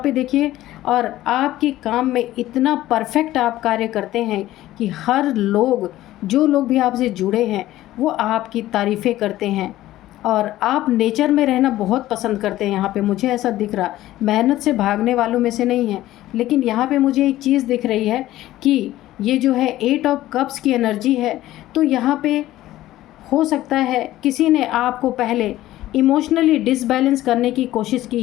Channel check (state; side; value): quieter; right; 15.1 dB